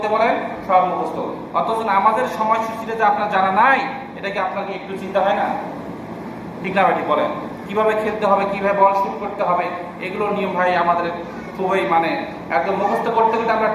বলেন, সব মুখস্থ। অথচ আমাদের সময়সূচিটা যে আপনার জানা নাই, এটা কি আপনাকে একটু চিন্তা হয় না? ঠিক না ভাই? ঠিক বলেন। কিভাবে খেলতে হবে, কিভাবে বল শুট করতে হবে, এগুলো নিয়ম ভাই আমাদের খুবই মানে একদম মুখস্থ করতে করতে আমরা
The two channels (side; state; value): both; identical; correlation 1.00